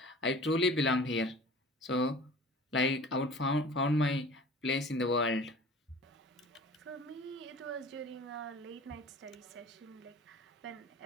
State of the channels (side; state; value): both; normal; correlation 0.43